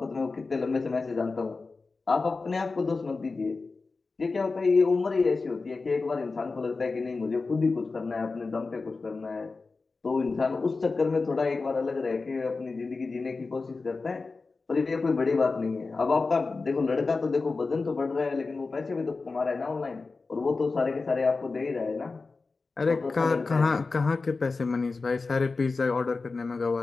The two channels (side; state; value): right; quieter; 4.0 dB